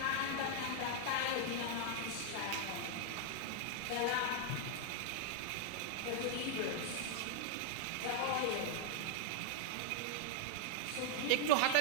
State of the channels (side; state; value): both; different; correlation 0.00